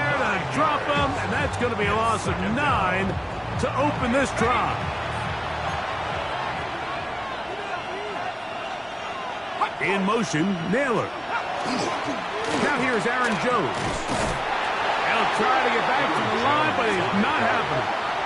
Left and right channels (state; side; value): identical; both; correlation 1.00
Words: to drop him, and that's going to be a loss of 9 to open this drive. In motion, Naylor. Now here's Aaron Jones. They'll try to get back to the line, but it's not happening.